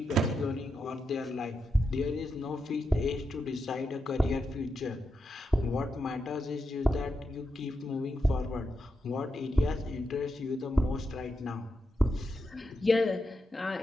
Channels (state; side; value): normal; both; correlation 0.86